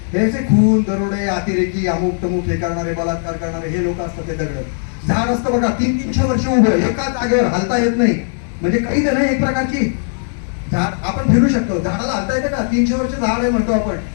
हे खून दरोडे अतिरेकी अमुक तमुक हे करणारे, बलात्कार करणारे हे लोक असतात ते दगड. झाड असतं बघा 300-300 वर्ष उभं एका जागेवर, हलता येत नाही, म्हणजे काही नाही एक प्रकारची झाड. आपण फिरू शकतो, झाडाला हलता येतं का? 300 वर्ष झाड आहे म्हणतो आपण,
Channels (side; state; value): right; silent; digital silence